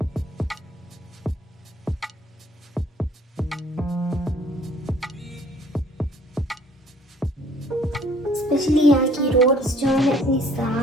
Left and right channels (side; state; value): both; normal; correlation 0.57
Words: स्पेशली यहाँ की रोड्स जो है इतनी